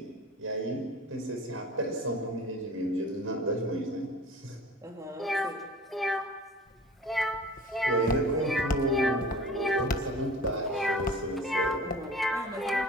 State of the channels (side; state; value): both; normal; correlation 0.42